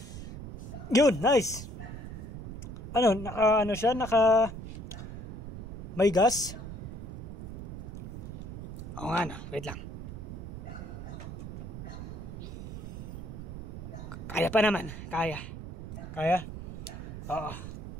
Yun! Nice! Naka may gas? Oo nga na, wait lang. Kaya pa naman. Kaya? Oo.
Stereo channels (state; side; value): noise; right; rumble, 8 dB below the sound